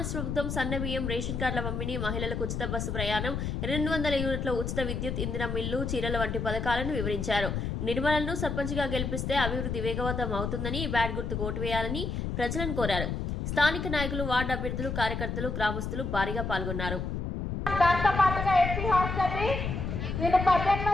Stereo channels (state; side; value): noise; left; rumble, 3 dB below the sound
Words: ప్రభుత్వం సన్నబియ్యం, రేషన్ కార్డుల పంపిణీ, మహిళలకు ఉచిత బస్సు ప్రయాణం, 200 యూనిట్ల ఉచిత విద్యుత్, ఇంధన మిల్లు, చీరల వంటి పథకాలను వివరించారు. నిర్మలను సర్పంచ్గా గెలిపిస్తే అభివృద్ధి వేగవంతం అవుతుందని, బ్యాట్ గుర్తుకు ఓటు వేయాలని ప్రజలను కోరారు. స్థానిక నాయకులు, వార్డు అభ్యర్థులు, కార్యకర్తలు, గ్రామస్తులు భారీగా పాల్గొన్నారు. దాంతో పాటుగా ఎస్సీ హాస్టల్ని నేను